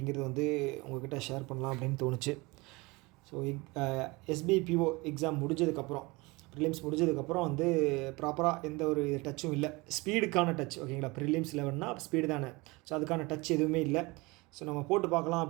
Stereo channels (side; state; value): left; quieter; 24.3 dB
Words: வந்து உங்கள்கிட்ட ஷேர் பண்ணலாம் அப்படின்னு தோணுச்சு. ஸோ எஸ்பிஐ பிஓ எக்ஸாம் முடிஞ்சதுக்கப்புறம், ப்ரிலிம்ஸ் முடிஞ்சதுக்கப்புறம் வந்து ப்ராப்பராக எந்த ஒரு டச்சும் இல்லை. ஸ்பீடுக்கான டச், ஓகேங்களா. ப்ரிலிம்ஸ் 11னா ஸ்பீடு தானே. ஸோ அதுக்கான டச் எதுவுமே இல்லை. ஸோ நம்ம போட்டு பார்க்கலாம்